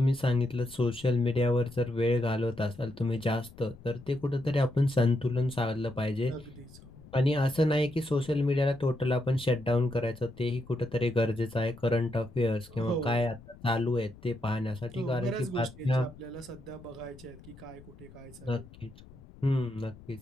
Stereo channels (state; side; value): noise; left; rumble, 20 dB below the sound